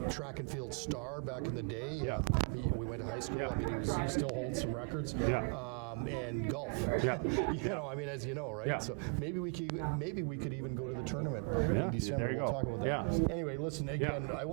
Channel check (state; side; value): quieter; left; 39.5 dB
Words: track and field star back in the day. Yeah. We went to high school. Yeah. I mean, he still holds some records. Yeah. And golf. Yeah. I mean, as you know, right? Yeah. So maybe we could even go to the tournament in December. There you We'll go. talk about that. Yeah. Anyway, listen again. I